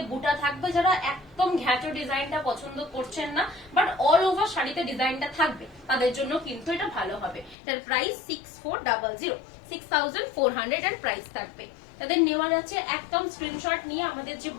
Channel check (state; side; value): drops out; right; at 7.6 s